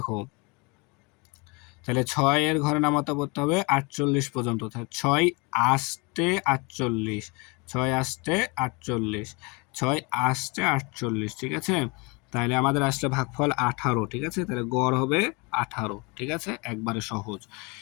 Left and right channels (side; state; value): right; quieter; 28.9 dB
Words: তাহলে 6 এর ঘরে নামাতে পড়তে হবে 48 পর্যন্ত, তাহলে 6 আস্তে 48, 6 আস্তে 48, 6 আস্তে 48, ঠিক আছে। তাহলে আমাদের আসলে ভাগফল 18, ঠিক আছে, তাহলে গড় হবে 18, ঠিক আছে, একবারে সহজ।